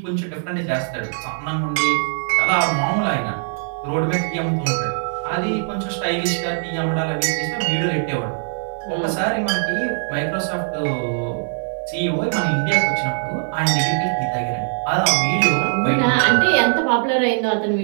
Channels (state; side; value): silent; left; digital silence